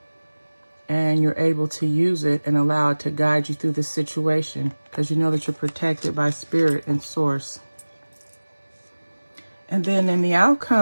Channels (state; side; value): inverted; both; correlation -1.00